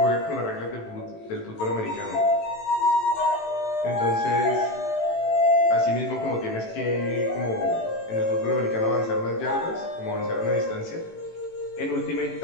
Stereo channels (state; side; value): late; right; 18 ms